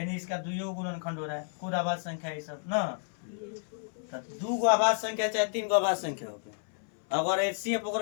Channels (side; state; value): right; silent; 57 dB below the other